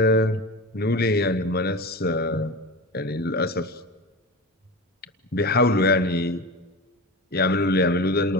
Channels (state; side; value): normal; both; correlation 0.27